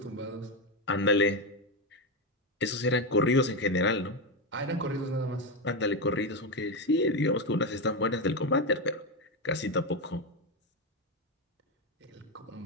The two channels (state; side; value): normal; both; correlation 0.11